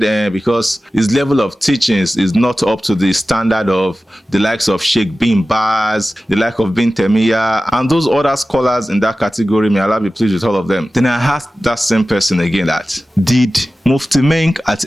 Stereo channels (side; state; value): both; normal; correlation 0.95